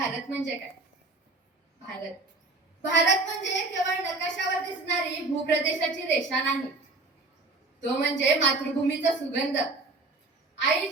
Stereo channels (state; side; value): quieter; left; 3.3 dB